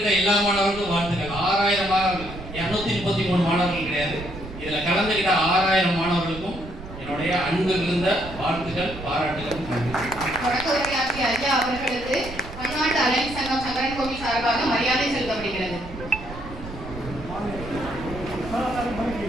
எல்லா மாணவர்களுக்கும் வாழ்த்துக்கள். 6000 மாணவர்கள், 233 மாணவர்கள் கிடையாது. இதில் கலந்துக்கிட்ட 6000 மாணவர்களுக்கும் என்னுடைய அன்பு இருந்த வாழ்த்துக்கள், பாராட்டுகள். தொடக்க உரையாற்றிய ஐயா அவர்களுக்கு பன்னாட்டு அலையன்ஸ் சங்கம் சங்கரன் கோவில் சார்பாக மரியாதை செலுத்தப்படுகிறது.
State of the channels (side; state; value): right; noise; rumble, 12 dB below the sound